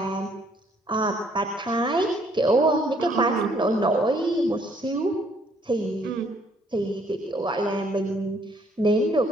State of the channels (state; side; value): normal; both; correlation 0.65